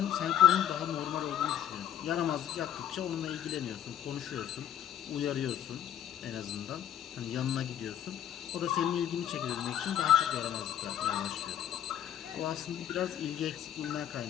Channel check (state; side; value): quieter; right; 10.4 dB